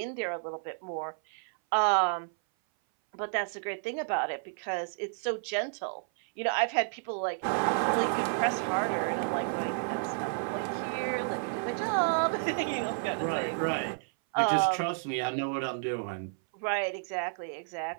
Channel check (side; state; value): left; silent; 57 dB below the other